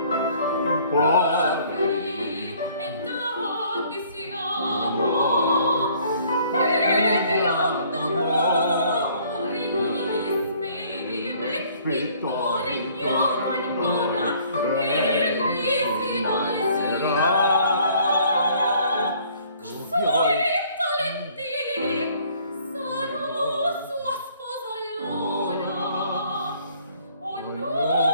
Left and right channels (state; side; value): inverted; both; correlation -0.59